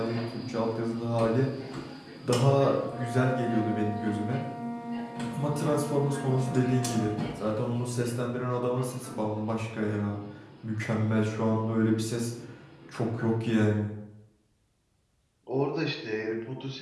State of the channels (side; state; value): both; identical; correlation 1.00